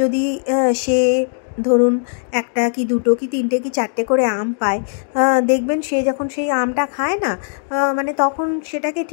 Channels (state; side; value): silent; right; digital silence